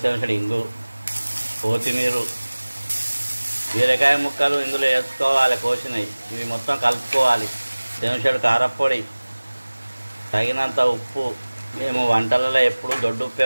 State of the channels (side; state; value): both; inverted; correlation -1.00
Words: చెంచాడు ఇంగు, కొత్తిమీర, బీరకాయ ముక్కలు ఇందులో వేసుకోవాలి. కోసినవి ఇవి మొత్తం కలుపుకోవాలి. చెంచాడు కారపొడి, తగినంత ఉప్పు. మేము వంటలలో ఎప్పుడు దొడ్డు